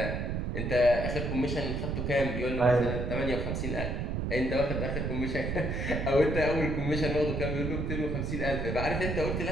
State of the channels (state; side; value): noise; right; rumble, 1 dB below the sound